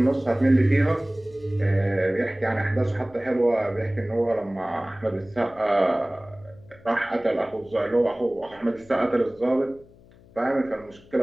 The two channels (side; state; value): left; noise; hum, 25 dB below the sound